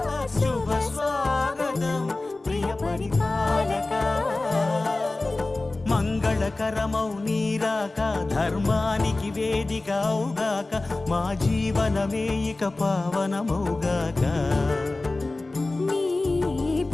శుభ స్వాగతం ప్రియ పరిపాలక మంగళకరమౌ నీరాక ధర్మానికి వేదిక అవుగాక మా జీవనమే ఇక పావనమౌగాక నీ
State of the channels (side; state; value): right; quieter; 3.1 dB